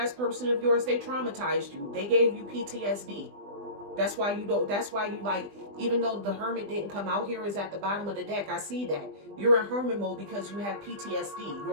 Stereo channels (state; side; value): late; left; 20 ms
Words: person of yours, they traumatized you. They gave you PTSD. That's why you don't, that's why you like, even though the Hermit didn't come out here, is at the bottom of the deck. I see that. You're in Hermit mode because you have PTSD.